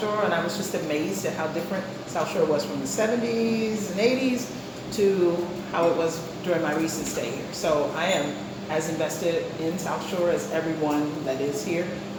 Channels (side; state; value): both; identical; correlation 1.00